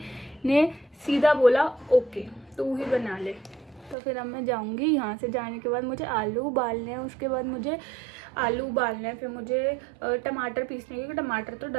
ने सीधा बोला ओके तू ही बना ले। तो फिर अब मैं जाऊंगी। यहाँ से जाने के बाद मुझे आलू उबालने हैं, उसके बाद मुझे आलू उबालना है, फिर मुझे टमाटर पीसने, क्योंकि टमाटर तो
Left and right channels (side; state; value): left; drops out; at 4.0 s